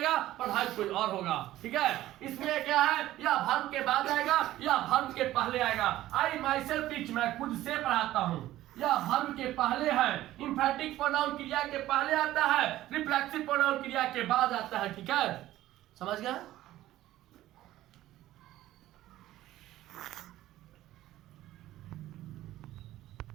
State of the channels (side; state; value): left; quieter; 14.8 dB